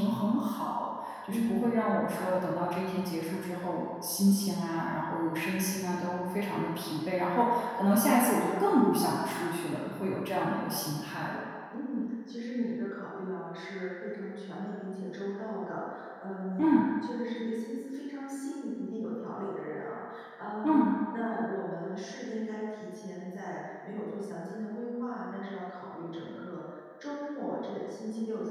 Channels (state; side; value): identical; both; correlation 1.00